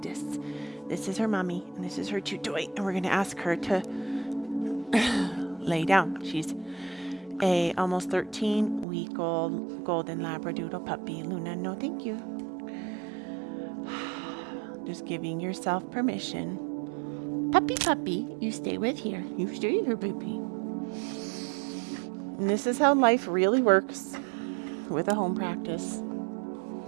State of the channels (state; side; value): drops out; left; at 8.8 s